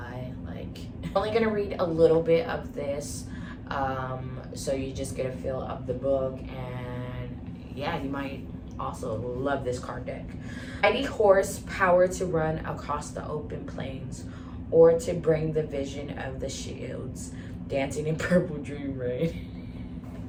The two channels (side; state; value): both; identical; correlation 1.00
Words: Like, I'm only gonna read a little bit of this, so you just get a feel of the book, and yeah, you might also love this card deck. Mighty horse, power to run across the open plains, or to bring the vision of the shields, dancing in purple dream rain.